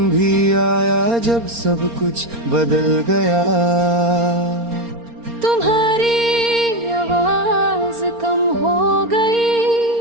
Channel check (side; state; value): left; late; 4.3 ms